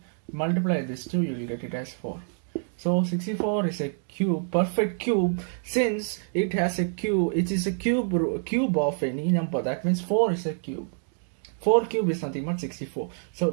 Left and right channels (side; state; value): left; silent; 60 dB below the other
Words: multiply this 2, you will get it as 4. So 64 is a cube, perfect cube, since it has a cube. It is a cube of any number. That means 4 is a cube. 4 cube is nothing but 64.